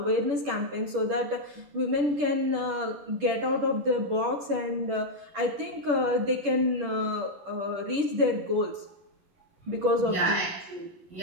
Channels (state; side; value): late; left; 10 ms